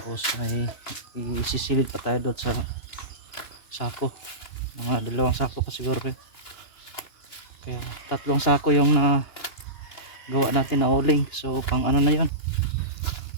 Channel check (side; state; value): right; late; 2.9 ms